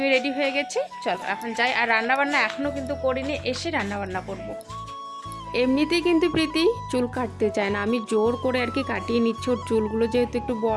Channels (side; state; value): both; identical; correlation 1.00